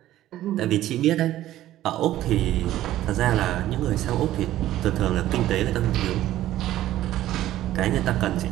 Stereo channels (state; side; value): quieter; left; 13.9 dB